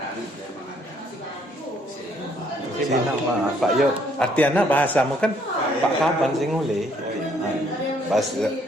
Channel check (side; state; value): both; normal; correlation 0.66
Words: memang ada. Si nama Pak Yo, artinya bahasamu kan Pak Kaban sing ngule.